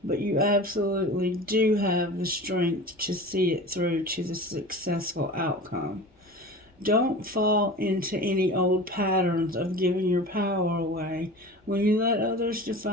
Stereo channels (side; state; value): both; normal; correlation 0.36